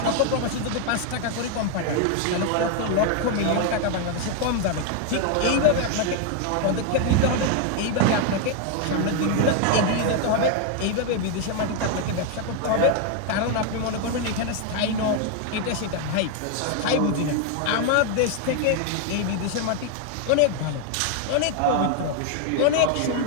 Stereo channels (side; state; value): both; different; correlation 0.01